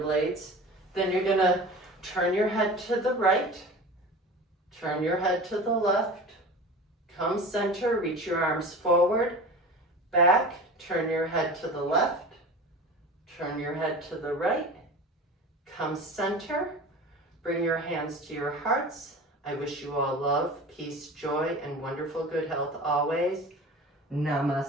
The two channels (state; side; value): normal; both; correlation 0.35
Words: blades. Then you're going to turn your head to the right, turn your head to the left, come center, reach your arms forward, back, turn your head to the left, turn your head to the right, come center, bring your hands to your hearts. I wish you all love, peace, joy, and wonderful good health always.